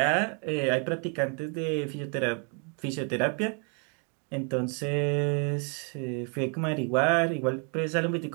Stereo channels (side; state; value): left; quieter; 39.7 dB